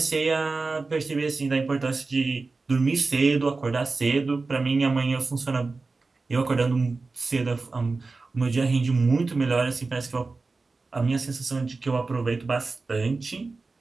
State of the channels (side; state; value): left; quieter; 3.9 dB